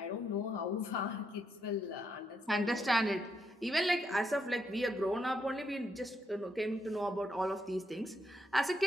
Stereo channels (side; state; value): both; normal; correlation 0.79